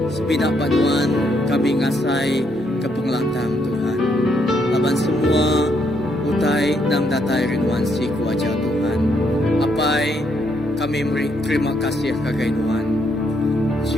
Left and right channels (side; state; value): both; normal; correlation 0.74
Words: Sebinak banuan kami ngasai ke pengelantang Tuhan. Laban semua utai nang datai rinuan si kuaja Tuhan. Apai kami terima kasih kagai Nuan.